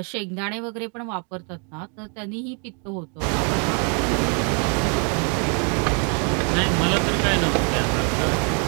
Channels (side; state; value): left; quieter; 38.0 dB